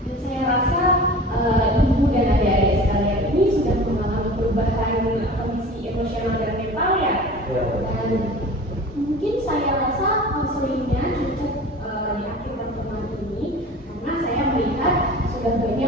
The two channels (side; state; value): both; normal; correlation 0.39